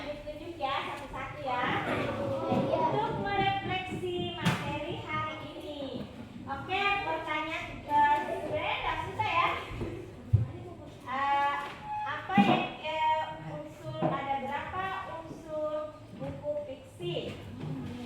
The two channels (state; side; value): identical; both; correlation 1.00